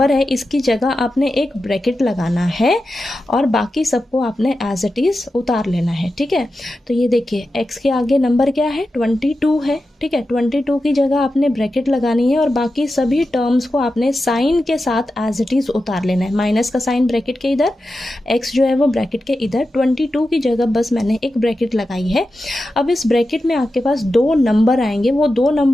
है इसकी जगह आपने एक ब्रैकेट लगाना है और बाकी सबको आपने एज इट इज़ उतार लेना है। ठीक है, तो ये देखिए x के आगे नंबर क्या है, 22 है। ठीक है, 22 की जगह आपने ब्रैकेट लगानी है और बाकी सभी टर्म्स को आपने साइन के साथ एज इट इज़ उतार लेना है। माइनस का साइन ब्रैकेट के इधर, x जो है वो ब्रैकेट के इधर, 22 की जगह बस मैंने एक ब्रैकेट लगाई है। अब इस ब्रैकेट में आपके पास 2 नंबर आएंगे, वो 2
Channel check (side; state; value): both; normal; correlation 0.91